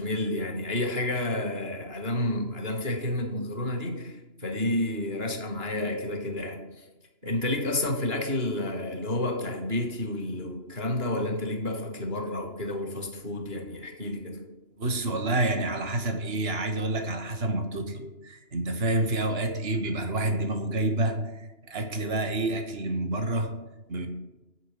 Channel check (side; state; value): left; late; 2.9 ms